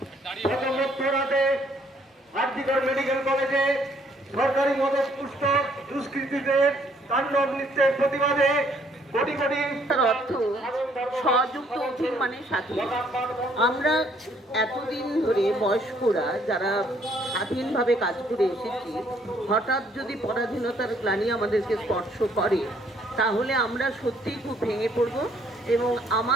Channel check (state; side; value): normal; both; correlation 0.65